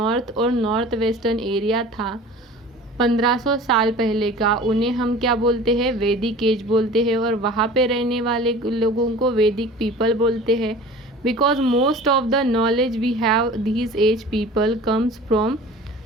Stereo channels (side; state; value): both; normal; correlation 0.41